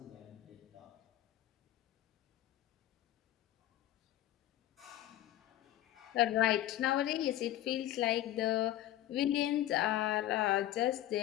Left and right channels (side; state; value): right; quieter; 13.7 dB